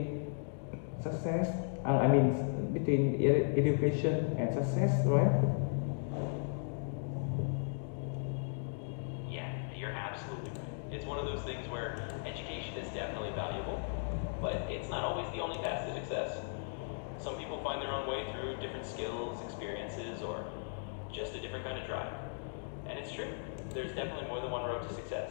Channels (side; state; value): right; silent; digital silence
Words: success. I mean between education and success, right? Yeah, you're absolutely right. It's one of those things where education is definitely valuable, but it's not always the only path to success. Some people find their own way through different skills, experiences, or just a different kind of drive. And it's true, there's definitely more than one road to